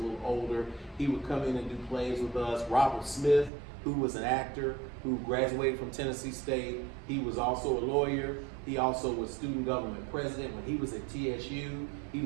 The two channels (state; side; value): drops out; left; at 3.5 s